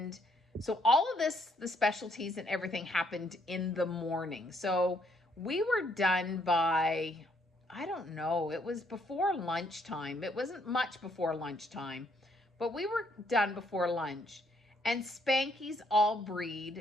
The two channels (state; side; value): normal; both; correlation 0.70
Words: so all of this, the specialties and everything happened in the morning. So we were done by, I don't know, it was before lunchtime. It wasn't much before lunchtime, but we were done before lunch. And Spanky's all